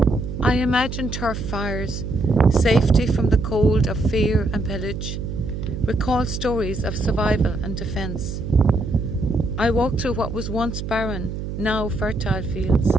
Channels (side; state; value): right; noise; hum, 6 dB below the sound